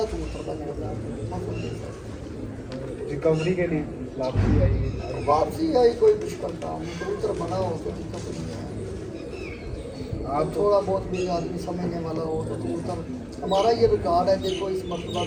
कबूतरबाजी होती है मौसम के हिसाब से। रिकवरी के लिए वापसी आई, वापसी आई कोई मुश्किल काम नहीं, कबूतर बना हो तो दिक्कत नहीं है। आप थोड़ा बहुत भी आदमी समझने वाला हो तो कबूतर, हमारा ये रिकॉर्ड है। देखो इस मरतबा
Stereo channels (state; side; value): identical; both; correlation 1.00